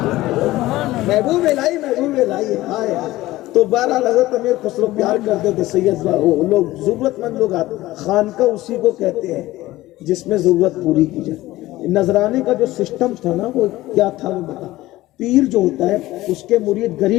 محبوب الہی آئے. تو بہرحال حضرت امیر خسرو پیار کرتے تھے سید لوگ، ضرورت مند لوگ آتے. خانقاہ اسی کو کہتے ہیں جس میں ضرورت پوری کی جائے. نذرانے کا جو سسٹم تھا نا وہ کیا تھا وہ بتا. پیر جو ہوتا ہے اس کے مرید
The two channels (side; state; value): right; quieter; 17.2 dB